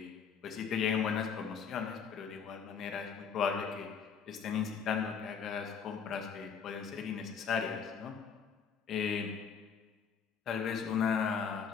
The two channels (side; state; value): right; quieter; 6.6 dB